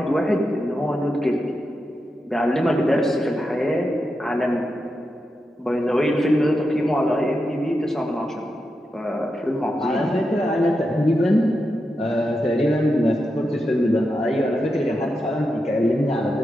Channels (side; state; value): both; normal; correlation 0.87